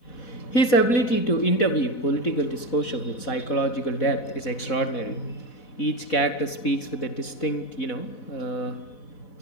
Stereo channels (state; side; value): late; right; 4.1 ms